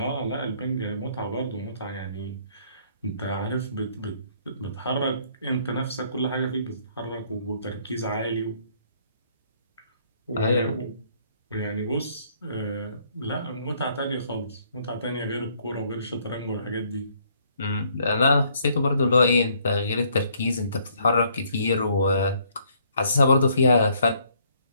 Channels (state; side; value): inverted; both; correlation -0.65